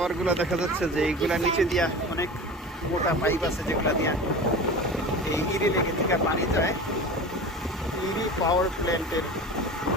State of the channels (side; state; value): both; normal; correlation 0.33